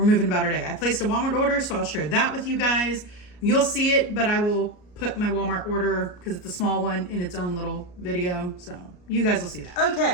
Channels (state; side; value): late; right; 34 ms